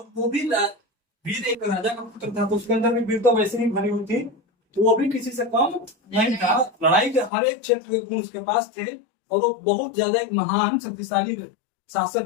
वो भी वीर एक राजा का पुत्र था, तो उसके अंदर भी वीर तो वैसे ही भरी हुई थी, तो वो भी किसी से कम नहीं था। लड़ाई के हर एक क्षेत्र के गुण उसके पास थे, और वो बहुत ज्यादा एक महान शक्तिशाली शासक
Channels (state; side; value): drops out; right; at 7.3 s